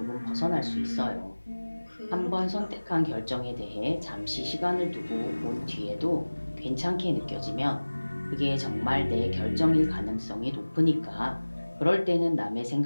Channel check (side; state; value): both; inverted; correlation -1.00